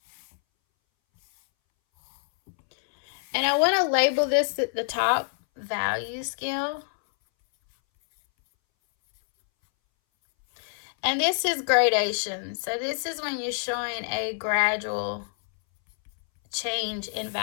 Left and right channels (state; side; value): silent; right; 61 dB below the other